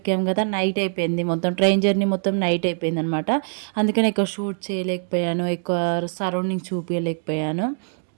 కదా, నైట్ అయిపోయింది. మొత్తం ట్రైన్ జర్నీ మొత్తం నైట్ అయిపోయింది అనమాట. అందుకని ఎక్కువ షూట్ చేయలేకపోయాను, ఎక్కువ సరౌండింగ్ చూపించలేకపోయాను.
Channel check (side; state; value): left; silent; digital silence